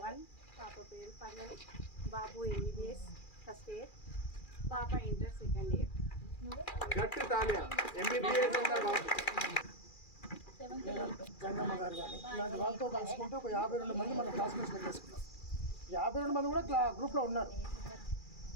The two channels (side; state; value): right; late; 2.4 ms